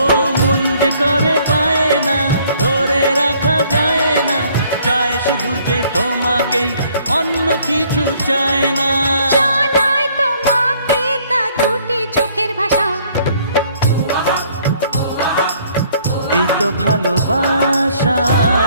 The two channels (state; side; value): inverted; both; correlation -0.62